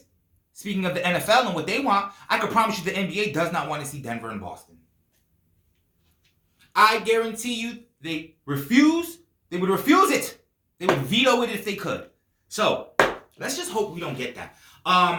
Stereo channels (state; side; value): identical; both; correlation 1.00